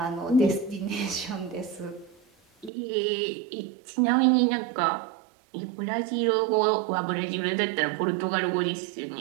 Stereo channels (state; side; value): drops out; left; at 2.7 s